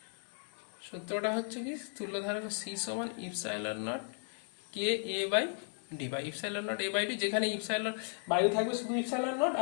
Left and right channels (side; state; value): right; silent; 54 dB below the other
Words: সূত্রটা হচ্ছে কি তুল্যধারক C সমান ইপসাইলন নট K/A/D বা ইপসাইলন নট A/D, যেখানে ইপসাইলন বায়ু থাকবে শুধু ইপসাইলন নট,